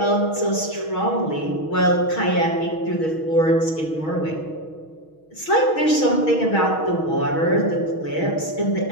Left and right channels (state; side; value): late; right; 6.3 ms